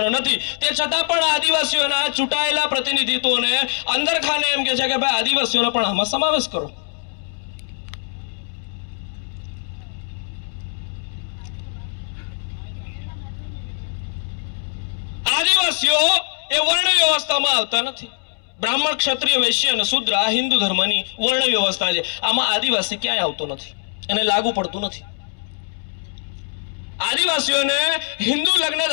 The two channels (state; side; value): silent; right; 64 dB below the other